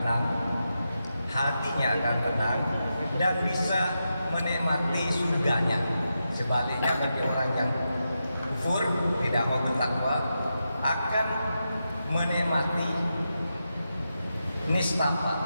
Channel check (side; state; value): both; inverted; correlation -0.88